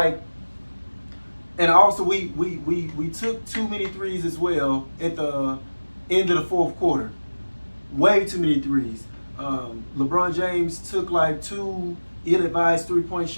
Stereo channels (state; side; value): inverted; both; correlation -1.00